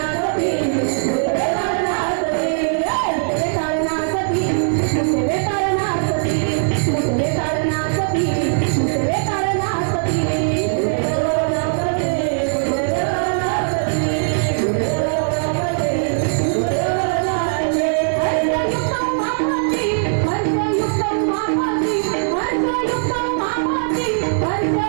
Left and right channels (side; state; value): left; silent; digital silence